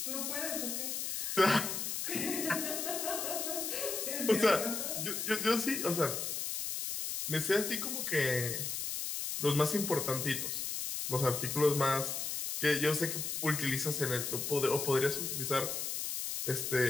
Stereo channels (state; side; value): noise; left; hiss, 2 dB below the sound